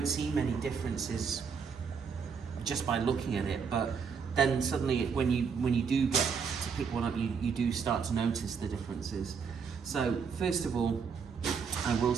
see many differences just by looking at it, but then suddenly when you do get to pick one up, you do start to notice the differences. So first of all, I will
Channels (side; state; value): left; quieter; 6.1 dB